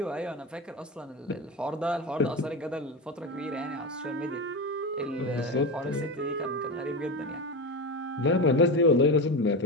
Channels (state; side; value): normal; both; correlation 0.20